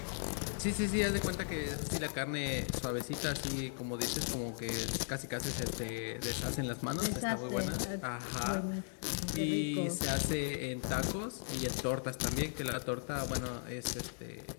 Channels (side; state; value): right; silent; digital silence